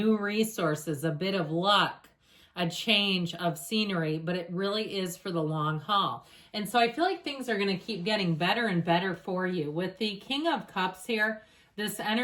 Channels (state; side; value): identical; both; correlation 1.00